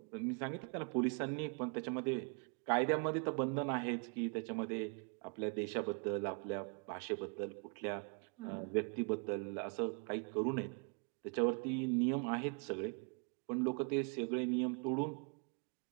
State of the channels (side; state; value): left; quieter; 37.1 dB